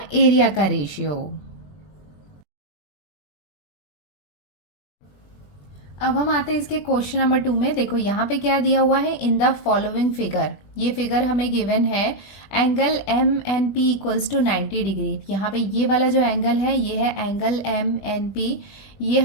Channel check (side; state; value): right; late; 21 ms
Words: एरिया का रेशियो। अब हम आते हैं इसके क्वेश्चन नंबर 2 में। देखो यहाँ पे क्या दिया हुआ है इन द फॉलोइंग फिगर। ये फिगर हमें गिवन है angle MNP equals to 90 degree. यहाँ पे ये वाला जो एंगल है ये है एंगल MNP। ये